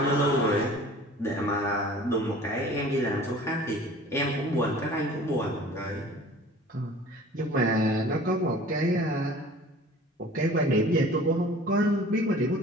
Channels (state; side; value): normal; both; correlation 0.46